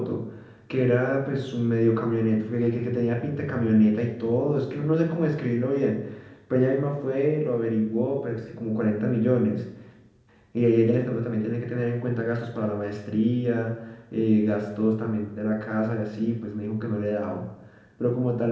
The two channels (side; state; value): both; identical; correlation 1.00